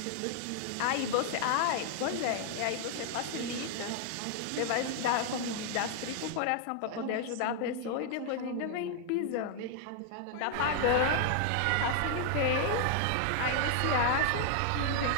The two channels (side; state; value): both; different; correlation 0.00